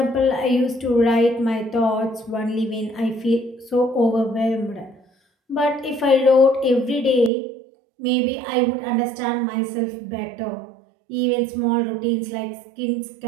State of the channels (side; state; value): left; drops out; at 7.3 s